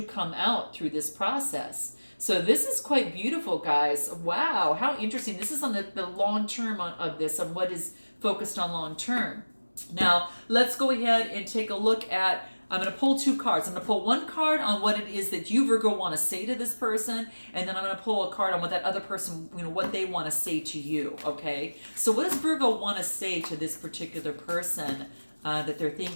come out through this process. So this is quite beautiful, guys. Wow, how interesting. This is on the long term of this, on what is focused on long term. Now, let's go ahead and take a look at, I'm going to pull two cards. I'm going to pull one card on what it is that you, Virgo, want to say to this person, and then I'm going to pull a card on what that other person, what they want to say to you, okay? So what does Virgo want to say to this particular person that they're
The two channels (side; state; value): both; inverted; correlation -1.00